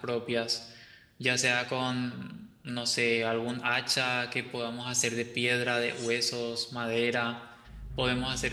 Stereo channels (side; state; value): both; identical; correlation 1.00